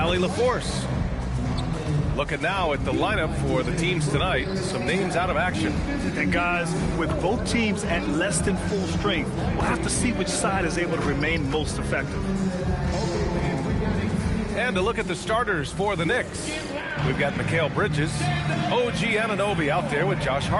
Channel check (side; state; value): both; identical; correlation 1.00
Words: LaForce. Looking now at the lineup for the teams tonight. Some names out of action. And guys, with both teams at less than full strength, we'll have to see which side is able to remain most effective. And to look at the starters for the Knicks. We've got Mikal Bridges, OG Anunoby out there with Josh